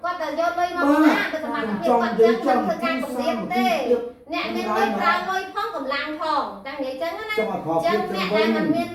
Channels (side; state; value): both; identical; correlation 1.00